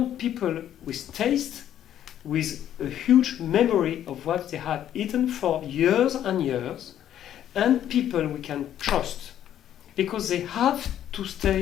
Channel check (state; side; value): quieter; right; 10.9 dB